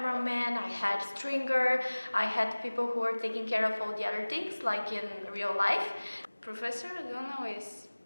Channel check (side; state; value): both; inverted; correlation -1.00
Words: I had stringer, I had people who were taking care of all the other things, like in real life. Professor O'Donnell is